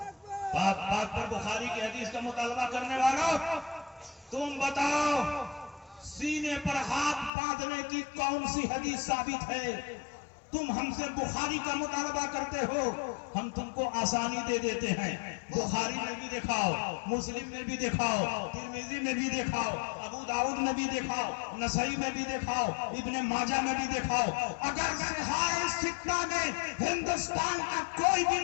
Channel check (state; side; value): drops out; right; at 7.3 s